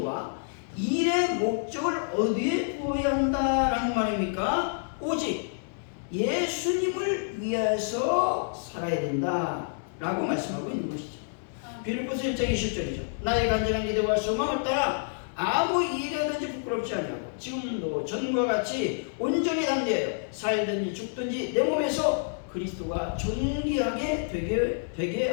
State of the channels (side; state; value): right; silent; 59 dB below the other